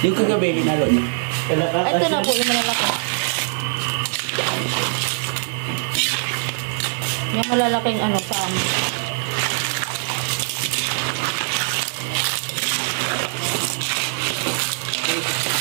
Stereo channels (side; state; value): left; silent; 58 dB below the other